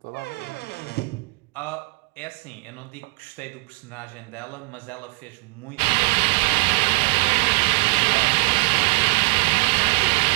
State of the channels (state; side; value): quieter; left; 31.6 dB